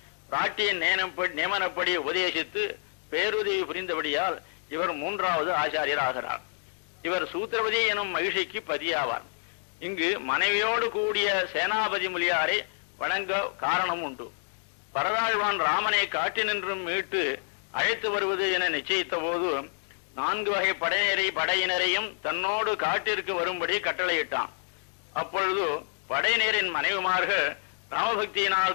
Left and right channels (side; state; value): right; silent; digital silence